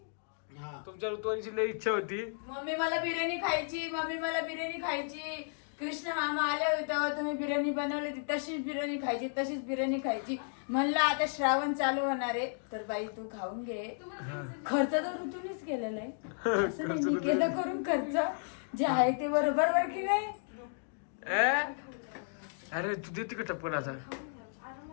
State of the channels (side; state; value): right; silent; digital silence